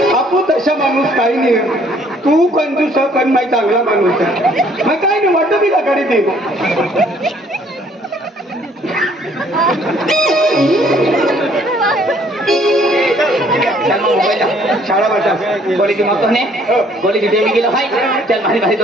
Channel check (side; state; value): both; normal; correlation 0.61